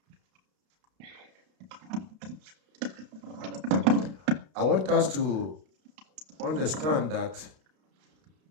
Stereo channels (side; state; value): left; late; 32 ms